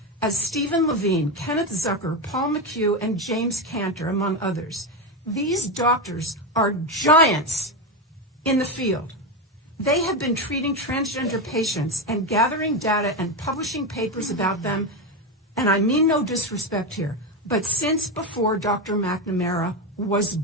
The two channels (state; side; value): normal; both; correlation 0.12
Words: as Stephen Levine, Kenneth Zucker, Paul McHugh, and James Cantor, among others. These doctors are giants in the field. They have been treating transgender patients and gathering data and publishing papers about them, and I mean no disrespect here, but since before Dr. McNamara was